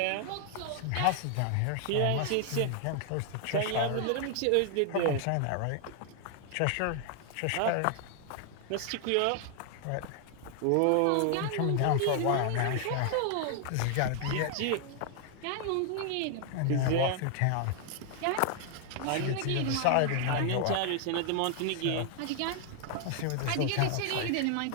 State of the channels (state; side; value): different; both; correlation 0.00